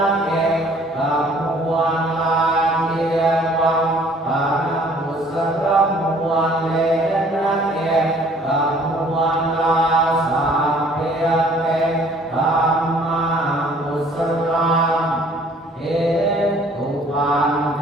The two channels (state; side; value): normal; both; correlation 0.56